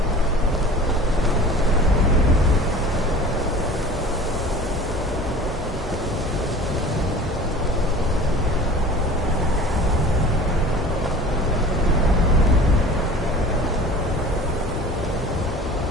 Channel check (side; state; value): both; normal; correlation 0.41